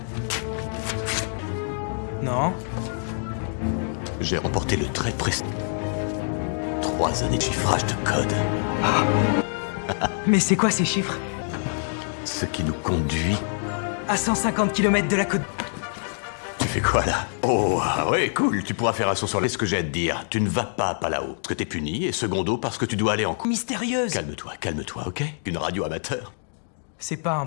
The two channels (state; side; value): silent; right; digital silence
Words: Non. J'ai remporté le très précis. 3 années de chiffrage de code. Mais c'est quoi ces chiffres? Ce qui nous conduit... À 150 km de la côte... Tu fais quoi là? Oh, ah ouais, cool, tu pourras faire un saut sur les... Ce que j'ai à te dire, tu ne vas pas à Palao, parce que t'es puni, et secondo, parce que tu dois aller en cours. Mystérieuse. Calme-toi, ok? Une radio amateur. C'est pas